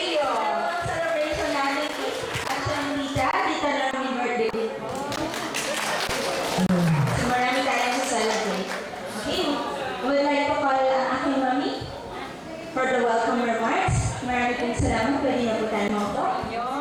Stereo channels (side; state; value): both; identical; correlation 1.00